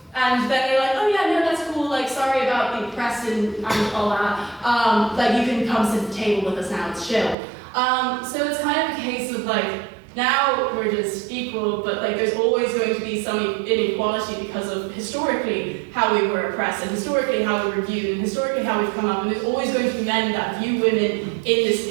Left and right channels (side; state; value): left; drops out; at 7.4 s